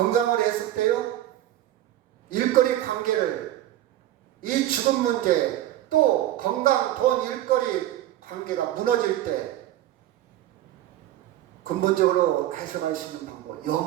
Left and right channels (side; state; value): left; quieter; 13.5 dB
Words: 해석돼요? 일거리 관계를, 이 죽음 문제, 또 건강, 돈, 일거리 관계가 무너질 때 근본적으로 해석할 수 있는 방법,